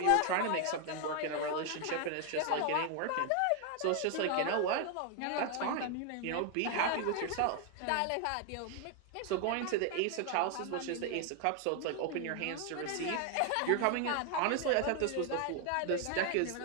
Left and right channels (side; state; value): both; different; correlation 0.01